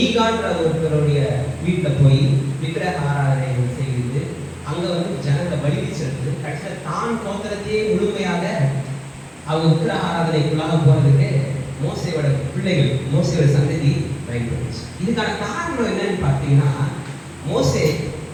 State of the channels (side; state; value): both; identical; correlation 1.00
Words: ஒருத்தருடைய வீட்டில் போய் விக்கிரக ஆராதனை செய்து அங்கே வந்து ஜனத்தை வலிமை செலுத்து, கடைசியில் தான் கோத்திரத்தையே முழுமையாக அவங்க விக்கிரக ஆராதனைக்குள்ளாக போகிறதுக்கு மோசையோட பிள்ளைகள், மோசையோட சந்ததி பயன்படுச்சு. இதுக்கான காரணம் என்னன்னு பார்த்தீங்கன்னா, மோசே